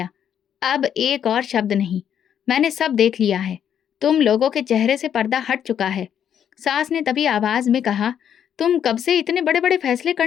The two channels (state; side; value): quieter; right; 9.0 dB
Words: अब एक और शब्द नहीं, मैंने सब देख लिया है। तुम लोगों के चेहरे से पर्दा हट चुका है। सास ने तभी आवाज में कहा, तुम कब से इतने बड़े बड़े फैसले